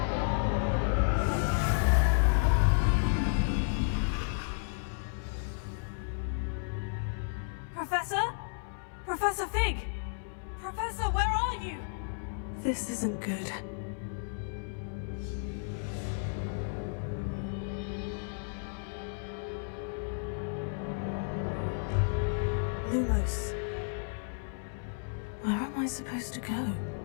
Professor? Professor Fig! Professor, where are you? This isn't good. Lumos. Where am I supposed to go?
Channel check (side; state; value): right; silent; 56 dB below the other